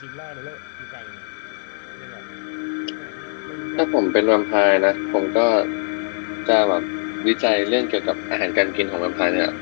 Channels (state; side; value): silent; right; digital silence